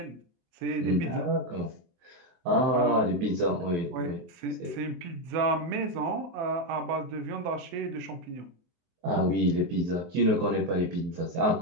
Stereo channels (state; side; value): late; left; 23 ms